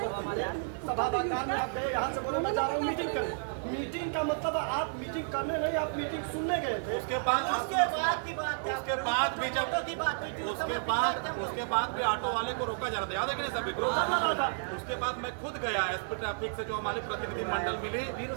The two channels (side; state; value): left; silent; digital silence